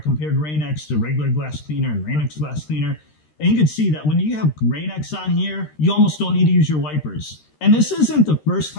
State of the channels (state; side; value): late; right; 13 ms